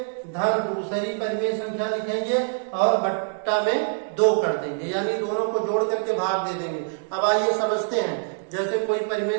धन दूसरी परिमेय संख्या लिखेंगे और बट्टा में 2 कर देंगे, यानी दोनों को जोड़ करके भाग दे देंगे। अब आइए समझते हैं, जैसे कोई परिमेय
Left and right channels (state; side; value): silent; left; digital silence